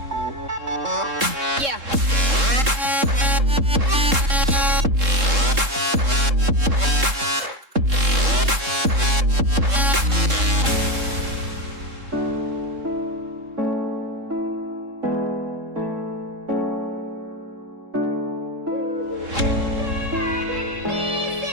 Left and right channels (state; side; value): late; left; 3.7 ms